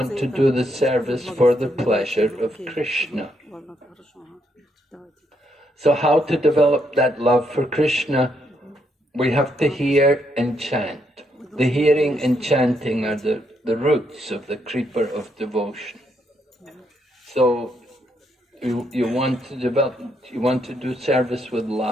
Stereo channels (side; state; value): both; normal; correlation 0.76